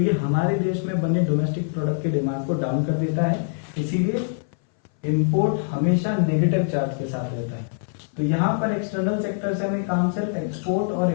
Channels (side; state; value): right; silent; 60 dB below the other